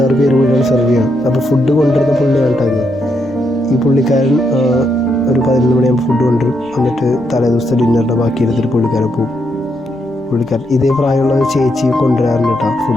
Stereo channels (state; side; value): normal; both; correlation 0.79